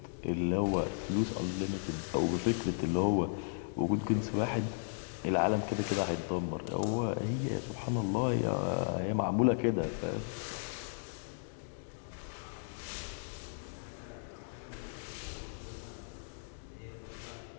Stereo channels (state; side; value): silent; right; digital silence